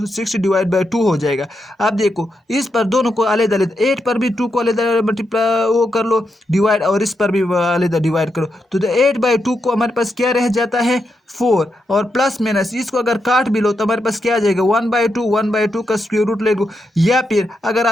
60 डिवाइड बाई 2 हो जाएगा। अब देखो, इस पर दोनों को अलग अलग, 8 पर भी 2 को अलग मल्टीप्लाई वो कर लो डिवाइड, और इस पर भी अलग डिवाइड करो। तो 8 बाई 2 को हमारे पास क्या रह जाता है 4, और प्लस माइनस इसको अगर काट भी लो तो हमारे पास क्या आ जाएगा 1/2 का स्क्वायर रूट ले लो। या फिर अगर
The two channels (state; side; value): normal; both; correlation 0.84